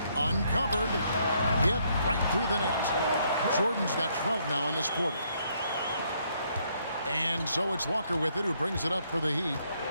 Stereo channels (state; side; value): inverted; both; correlation -0.71